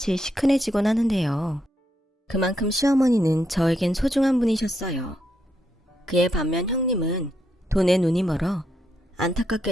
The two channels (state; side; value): normal; both; correlation 0.79